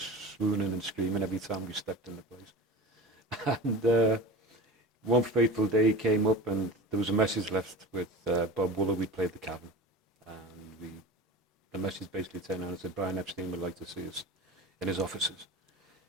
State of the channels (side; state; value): both; normal; correlation 0.34